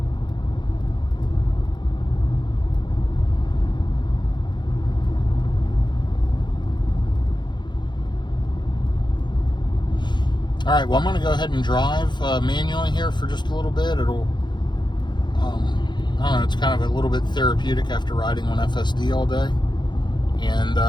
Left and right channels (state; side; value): late; right; 0.22 ms